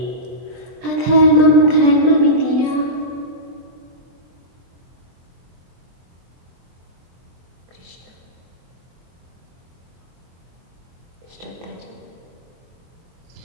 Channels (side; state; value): left; late; 23 ms